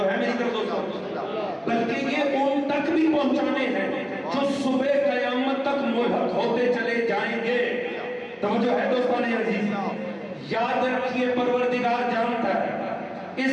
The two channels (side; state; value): both; identical; correlation 1.00